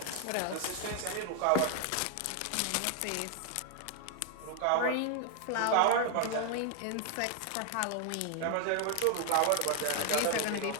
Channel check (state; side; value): different; both; correlation 0.00